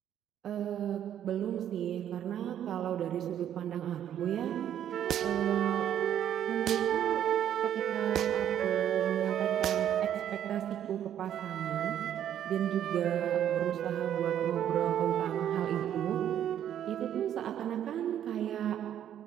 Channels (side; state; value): left; quieter; 10.3 dB